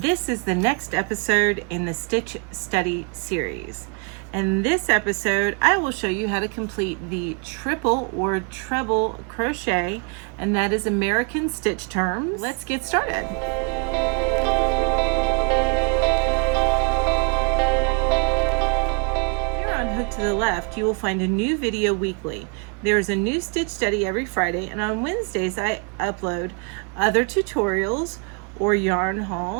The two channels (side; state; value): left; quieter; 37.2 dB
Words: this is the next episode in the Stitch Study series. In this episode, I will show you how to complete the triple or treble crochet, and that is American stitch terms. Let's get started. Hook to the Left, you will find a new video weekly. There is a new stitch study every Friday, and on Wednesdays I upload other tutorials or yarn